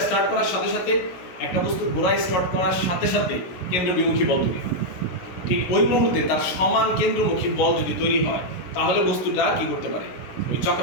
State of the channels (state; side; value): late; right; 16 ms